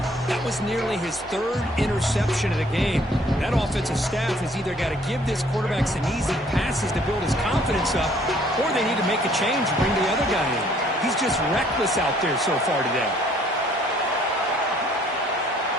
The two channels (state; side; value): normal; both; correlation 0.60